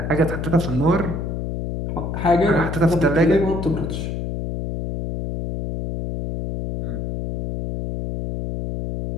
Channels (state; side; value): noise; left; hum, 4 dB below the sound